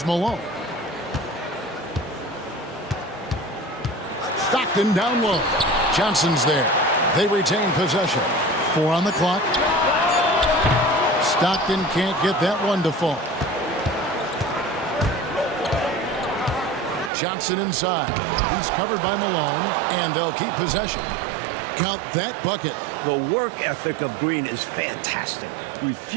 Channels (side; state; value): left; drops out; at 17.1 s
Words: Malone. Stockton down low. Johnson's there. They retain possession. 4 on the clock. Stockton can't get that one to fall. Johnson inside. He's covered by Malone, and they'll keep possession. Count that bucket. The work ethic of Green is fantastic,